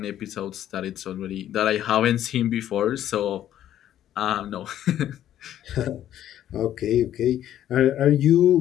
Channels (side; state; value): right; quieter; 11.6 dB